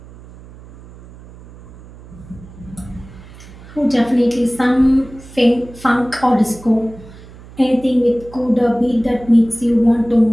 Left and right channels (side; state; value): right; noise; hum, 19 dB below the sound